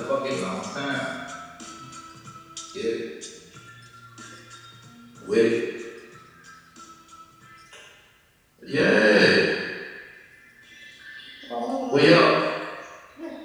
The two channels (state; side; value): identical; both; correlation 1.00